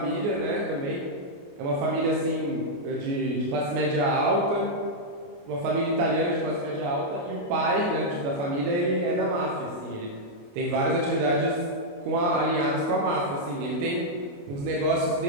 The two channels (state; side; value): late; left; 28 ms